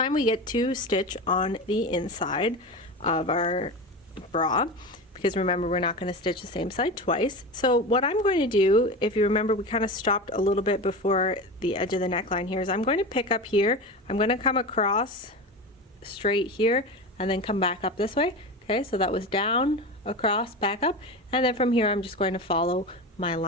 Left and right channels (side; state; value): both; normal; correlation 0.25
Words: we get to stitch on the inside of our bra, because remember, we're not going to stitch the same side twice. So what I'm going to do, if you remember, we kind of stopped a little bit before the edge of the neckline here, is I'm going to pick up here, I'm going to come across straight here and then come back up this way. Okay, so that was down, across, back up, and then from here I'm just going to follow my